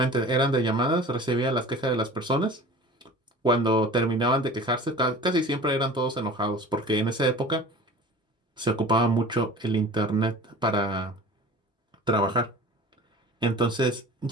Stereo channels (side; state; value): both; normal; correlation 0.40